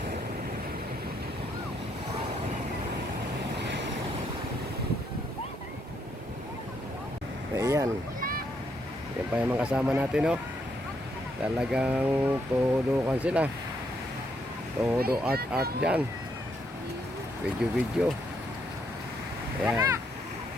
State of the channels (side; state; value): both; normal; correlation 0.75